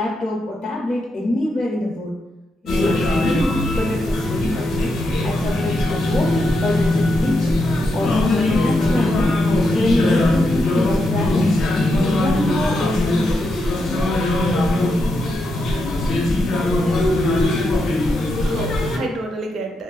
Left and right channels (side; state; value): both; normal; correlation 0.84